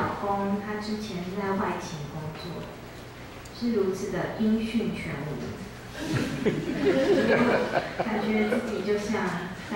公，他之前是在外勤工作，是如此的音讯全无，感觉自己就像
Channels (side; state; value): both; identical; correlation 1.00